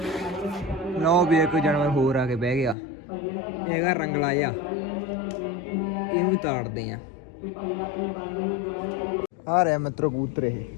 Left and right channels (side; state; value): right; drops out; at 2.8 s